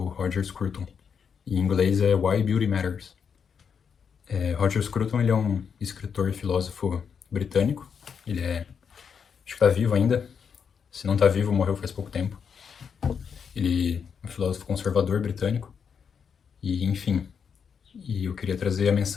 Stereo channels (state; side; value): quieter; right; 6.8 dB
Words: Roger Scruton. Em inglês é Why Beauty Matters. Roger Scruton, ele é um escritor e filósofo britânico. Ele acho que tá vivo ainda. Se não tá vivo, morreu faz pouco tempo. Ele é um filósofo conservador britânico. E, enfim, eu queria trazer a